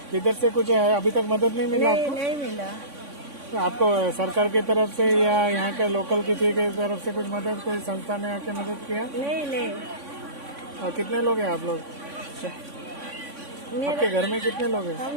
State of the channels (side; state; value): left; late; 3.6 ms